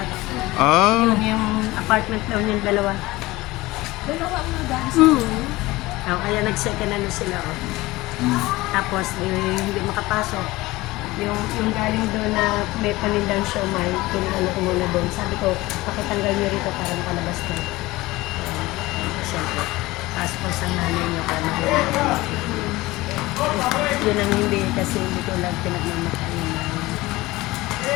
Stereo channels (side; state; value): right; quieter; 19.7 dB